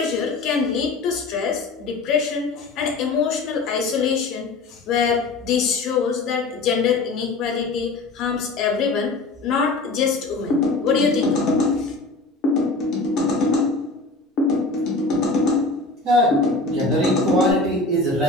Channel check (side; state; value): right; quieter; 3.4 dB